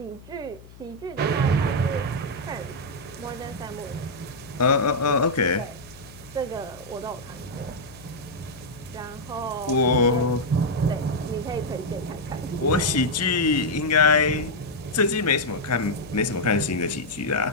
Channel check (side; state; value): left; noise; hum, 20 dB below the sound